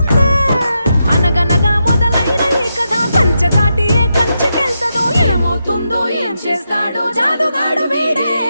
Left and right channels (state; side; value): inverted; both; correlation -0.85